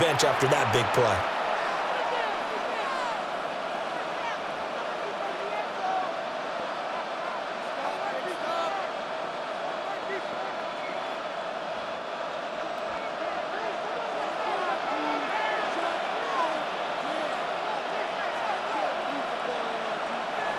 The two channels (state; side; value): identical; both; correlation 1.00